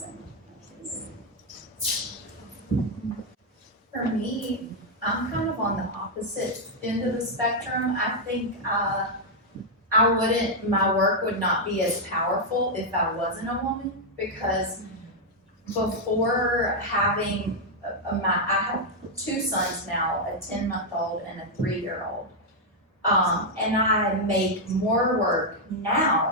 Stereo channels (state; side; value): normal; both; correlation -0.01